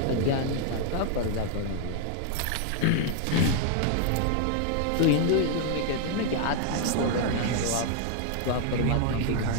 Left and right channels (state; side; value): different; both; correlation 0.00